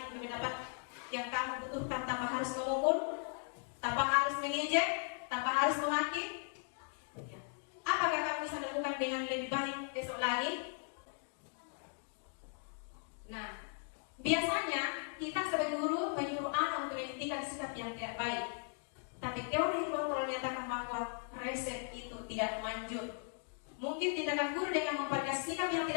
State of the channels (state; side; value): silent; right; 53 dB below the other